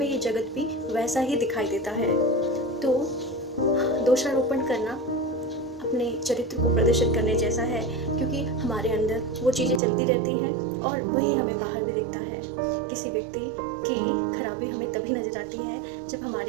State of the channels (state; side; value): drops out; left; at 9.8 s